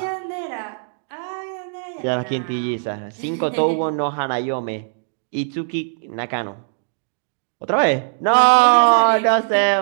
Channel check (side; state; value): left; silent; digital silence